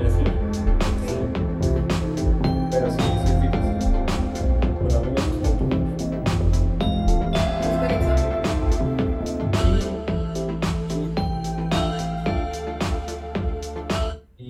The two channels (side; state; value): both; identical; correlation 1.00